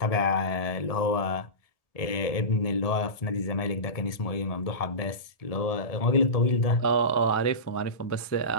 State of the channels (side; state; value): right; late; 1.7 ms